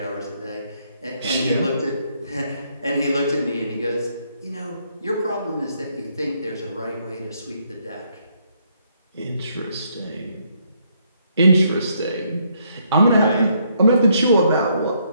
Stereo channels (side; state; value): both; inverted; correlation -0.72